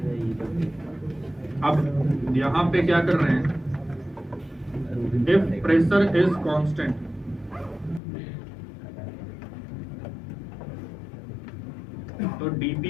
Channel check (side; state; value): right; drops out; at 8.0 s